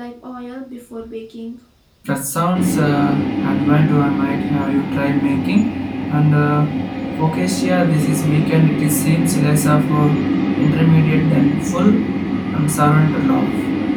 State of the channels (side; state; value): both; identical; correlation 1.00